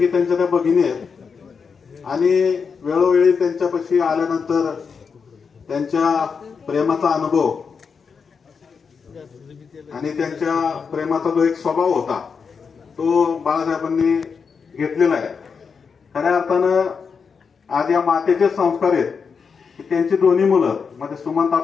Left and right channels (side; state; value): right; quieter; 5.8 dB